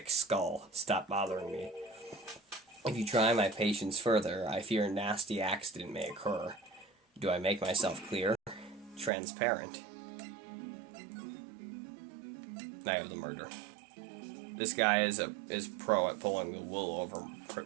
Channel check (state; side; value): drops out; left; at 9.1 s